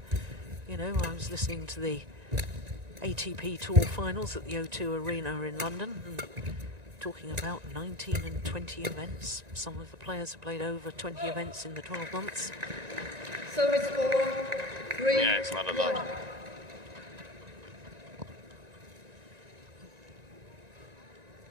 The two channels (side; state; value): left; late; 1.9 ms